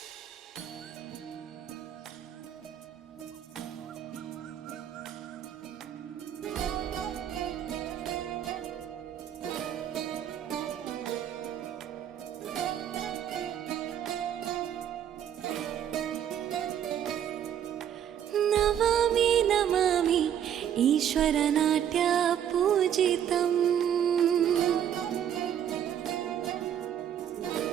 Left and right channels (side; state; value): left; quieter; 9.6 dB